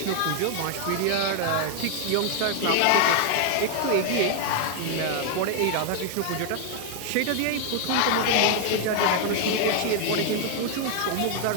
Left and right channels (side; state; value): both; different; correlation 0.00